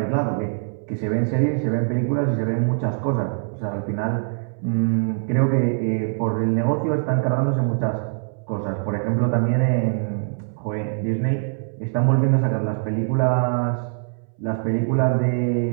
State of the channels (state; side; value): silent; left; 63 dB below the other